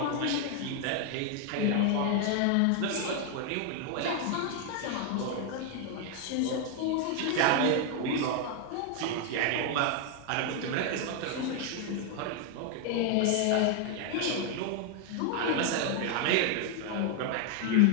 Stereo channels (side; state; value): both; different; correlation 0.00